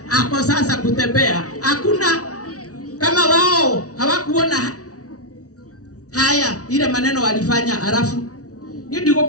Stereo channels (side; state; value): right; late; 0.67 ms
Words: ako sasa kutembea. Hakuna. Kama wao hawakuona haya ile maneno walifanya, alafu ni